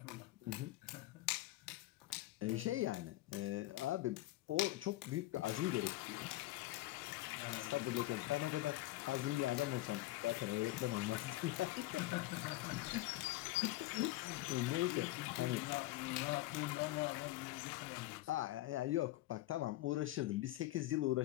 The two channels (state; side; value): quieter; right; 17.2 dB